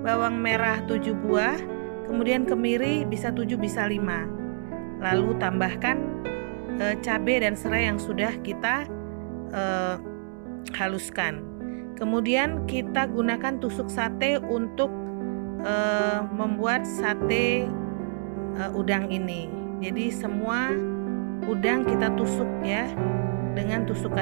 bawang merah 7 buah, kemudian kemiri bisa 7 bisa 5. Lalu tambahkan cabai dan serai yang sudah kita haluskan. Kemudian kita gunakan tusuk sate untuk membuat sate udang ini. Jadi semua udang kita tusuk ya dengan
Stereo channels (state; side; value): silent; left; digital silence